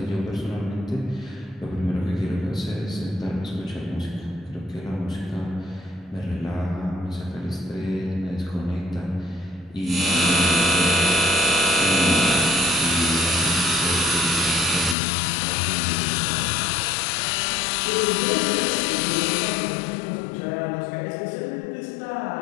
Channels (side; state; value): right; drops out; at 15.0 s